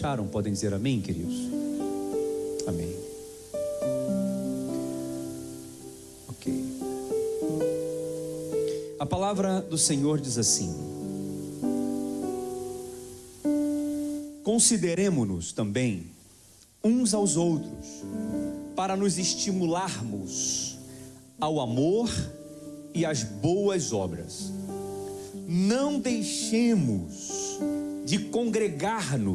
Podem dizer amém, queridos? Amém. Ok. A palavra do Senhor diz assim: consideremo-nos também uns aos outros, para nos estimularmos ao amor e às boas obras. Não deixemos de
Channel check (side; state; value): both; identical; correlation 1.00